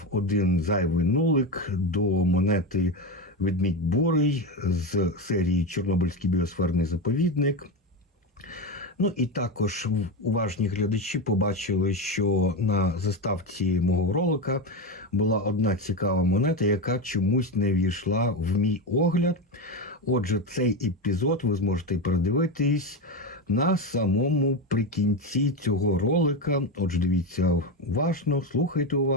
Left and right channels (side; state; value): both; normal; correlation 0.14